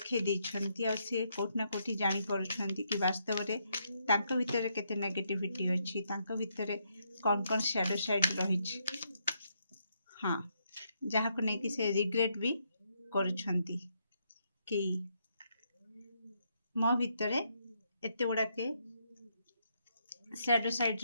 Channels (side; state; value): both; inverted; correlation -0.77